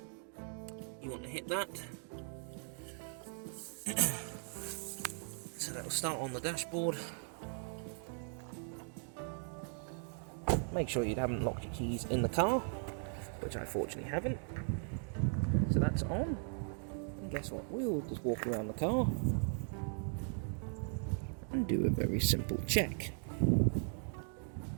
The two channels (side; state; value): left; silent; 52 dB below the other